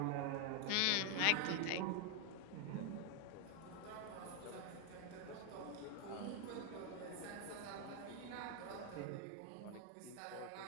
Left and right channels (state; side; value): different; both; correlation 0.01